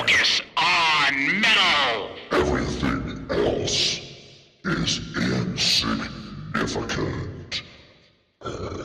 on metal. Everything else is insignificant.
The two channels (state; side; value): identical; both; correlation 1.00